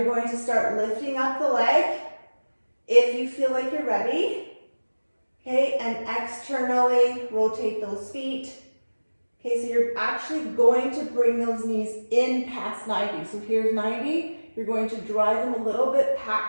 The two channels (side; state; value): both; inverted; correlation -1.00